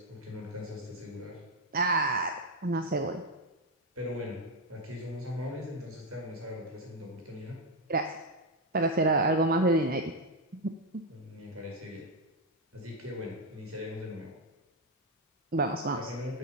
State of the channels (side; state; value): both; normal; correlation 0.05